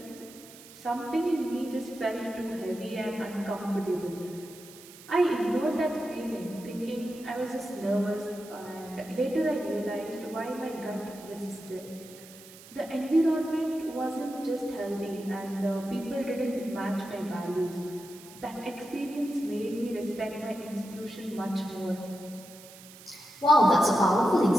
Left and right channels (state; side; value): noise; right; hiss, 19 dB below the sound